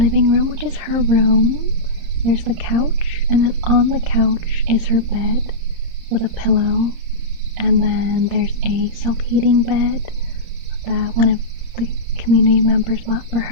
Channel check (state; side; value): late; left; 31 ms